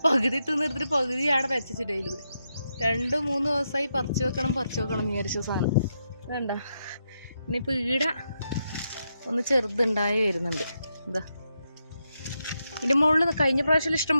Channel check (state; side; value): inverted; both; correlation -0.83